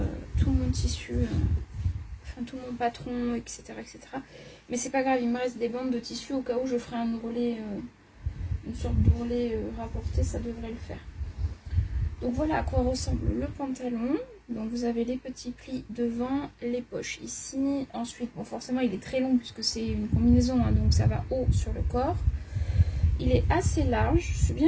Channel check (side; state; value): both; identical; correlation 1.00